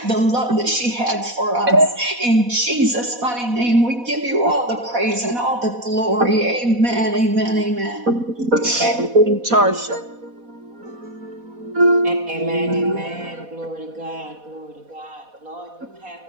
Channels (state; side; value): late; left; 4.1 ms